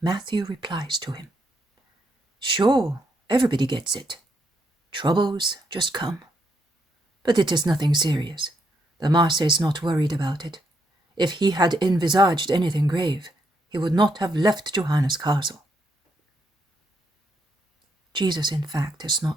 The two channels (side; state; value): both; normal; correlation 0.76